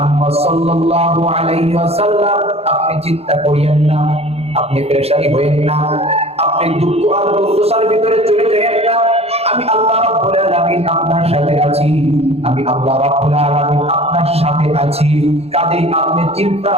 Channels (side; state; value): left; late; 0.29 ms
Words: সাল্লাল্লাহু আলাইহি ওয়াসাল্লাম, আপনি চিন্তা করিয়েন না, আপনি পেরেশানি হইেন না, আপনি দুঃখ আর দুর্দশার ভিতরে চলে যাবেন না। আমি আল্লাহ রাব্বুল আলামিন আপনার সাথে আছি, আমি আল্লাহ রাব্বুল আলামিন আপনার সাথে আছি। কাজেই আপনি চিন্তা